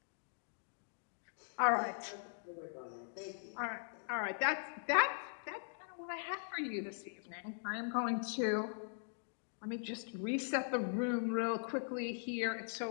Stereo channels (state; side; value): silent; right; digital silence